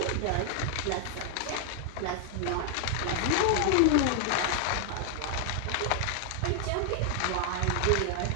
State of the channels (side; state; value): both; different; correlation 0.00